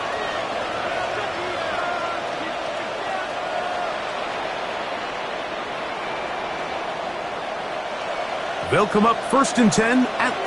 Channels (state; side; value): identical; both; correlation 1.00